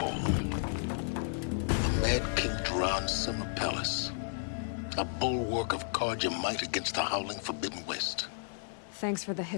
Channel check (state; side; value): silent; right; 56 dB below the other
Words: The Mad King Duran's summer palace. A bulwark of Carja might against the howling Forbidden West. Thanks for the